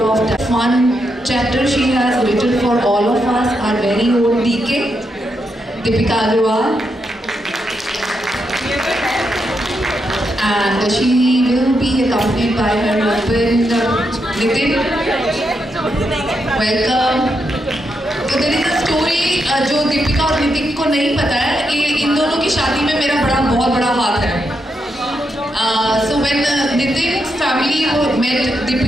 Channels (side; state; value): both; normal; correlation 0.82